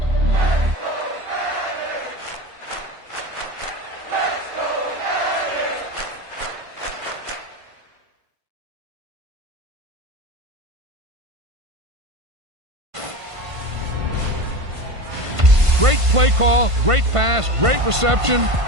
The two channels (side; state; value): left; late; 1.5 ms